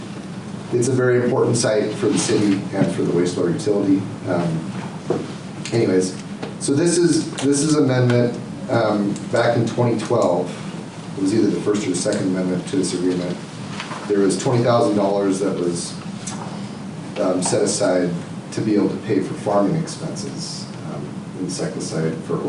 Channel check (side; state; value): both; identical; correlation 1.00